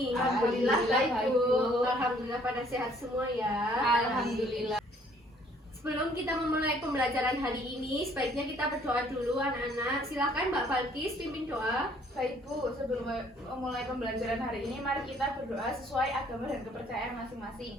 Alhamdulillah baik, Bu. Alhamdulillah pada sehat semua ya. Alhamdulillah. Sebelum kita memulai pembelajaran hari ini, sebaiknya kita berdoa dulu anak-anak. Silakan Mbak Balkis pimpin doa. Baik, Bu, sebelum memulai pembelajaran hari ini, mari kita berdoa sesuai agama dan kepercayaan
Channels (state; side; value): normal; both; correlation 0.61